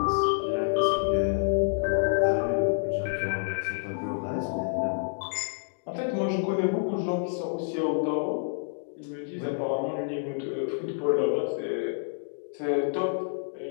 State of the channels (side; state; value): right; silent; digital silence